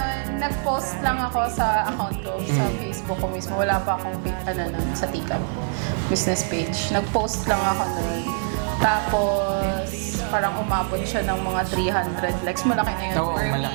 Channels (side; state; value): left; silent; 63 dB below the other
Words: nag-post lang ako sa account ko, sa Facebook ko mismo. Wala pa akong sa Tikap business page. Nag-post lang ako nun. Tapos, parang umabot siya ng mga 300 likes. Malaki na yun. Oo,